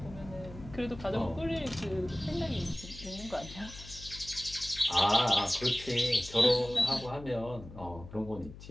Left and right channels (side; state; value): left; noise; hum, 15 dB below the sound